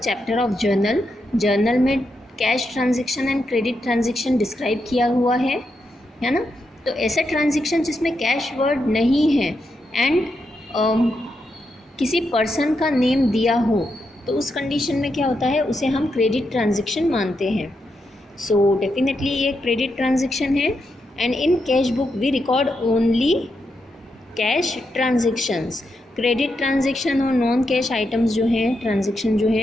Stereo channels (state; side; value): normal; both; correlation 0.84